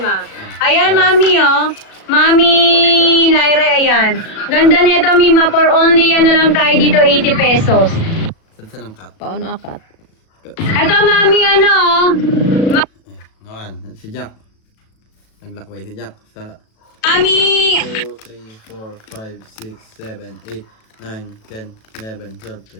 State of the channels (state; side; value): late; right; 37 ms